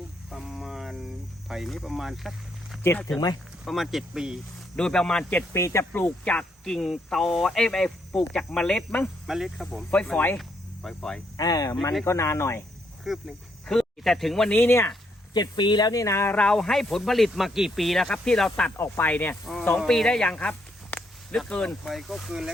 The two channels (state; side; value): normal; both; correlation 0.75